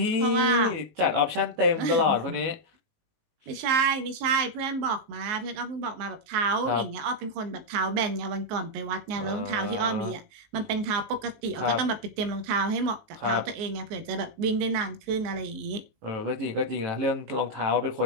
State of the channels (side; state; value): left; late; 19 ms